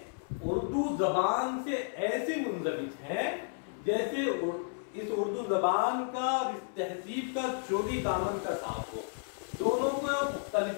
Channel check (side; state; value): right; silent; 56 dB below the other